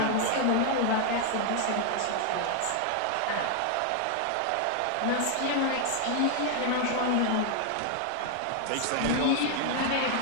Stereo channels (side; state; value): both; different; correlation 0.00